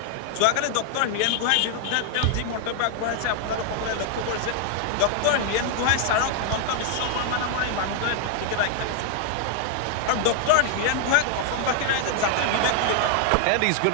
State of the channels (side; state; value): both; different; correlation 0.00